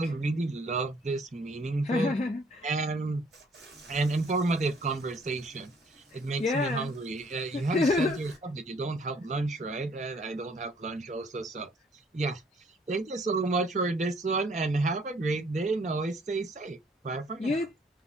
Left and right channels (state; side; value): normal; both; correlation 0.62